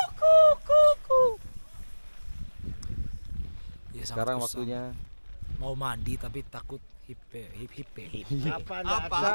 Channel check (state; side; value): inverted; both; correlation -1.00